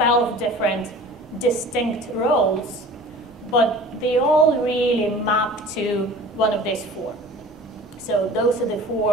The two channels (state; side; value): normal; both; correlation 0.43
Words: different distinct roles, but they all really map to one of these four. So those are the